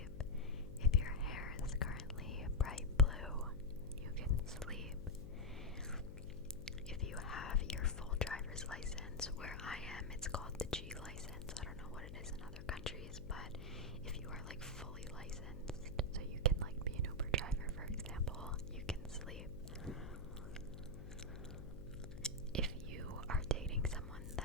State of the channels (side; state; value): left; noise; hum, 11 dB below the sound